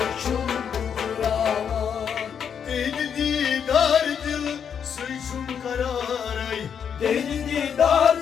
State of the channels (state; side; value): quieter; right; 7.6 dB